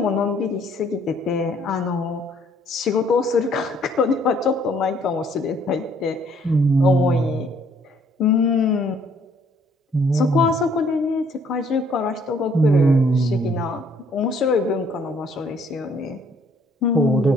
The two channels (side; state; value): both; normal; correlation 0.63